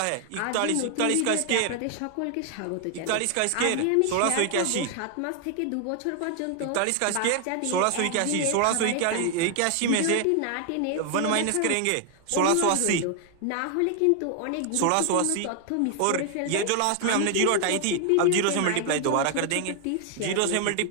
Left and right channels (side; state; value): both; different; correlation 0.00